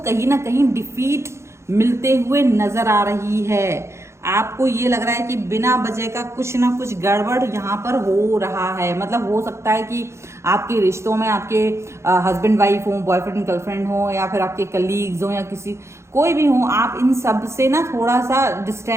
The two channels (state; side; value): late; left; 0.13 ms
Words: कहीं ना कहीं डिफीट मिलते हुए नज़र आ रही है। आपको ये लग रहा है कि बिना वजह का कुछ ना कुछ गड़बड़ यहाँ पर हो रहा है। मतलब हो सकता है कि आपके रिश्तों में आपके हस्बैंड वाइफ हो, बॉयफ्रेंड गर्लफ्रेंड हो, या फिर आपके कलीग्स हो, या किसी कोई भी हो, आप इन सब से ना थोड़ा सा